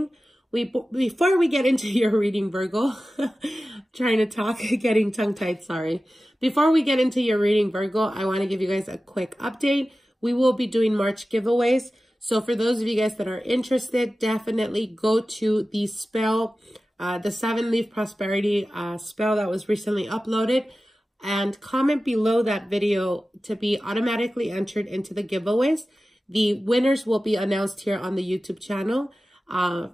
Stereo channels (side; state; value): both; normal; correlation 0.95